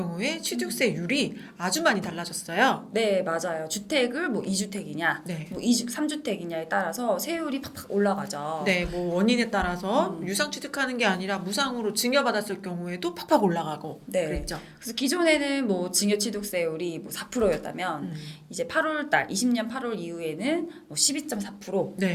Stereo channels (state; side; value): identical; both; correlation 1.00